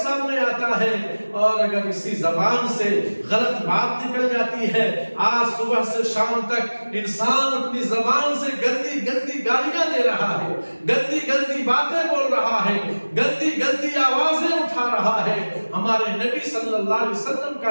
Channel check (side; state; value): both; inverted; correlation -1.00